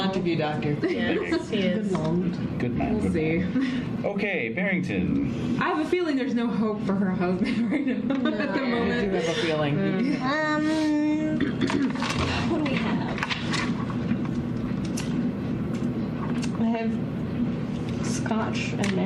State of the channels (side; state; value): both; identical; correlation 1.00